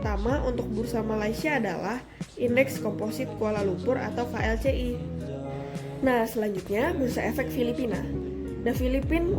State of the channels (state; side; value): identical; both; correlation 1.00